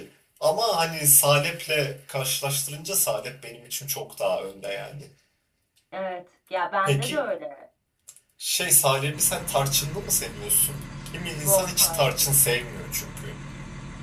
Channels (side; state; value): both; identical; correlation 1.00